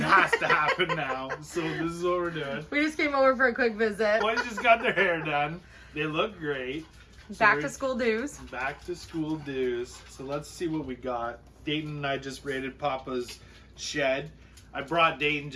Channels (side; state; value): both; identical; correlation 1.00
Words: to happen now. So this is what we're doing. We just came over for a quick visit. Boys just got their hair done. They look great. Back to school dues. Back to school dues. So let's see what we got. Dayton and I just raided Papa's shed. I brought Dayton